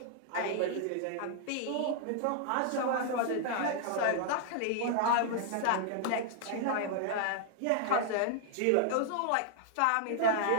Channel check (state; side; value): different; both; correlation -0.01